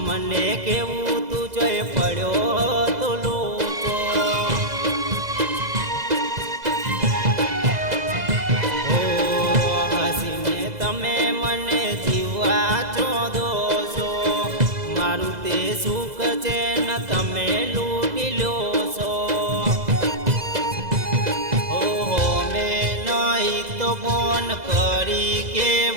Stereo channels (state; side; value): late; left; 2.0 ms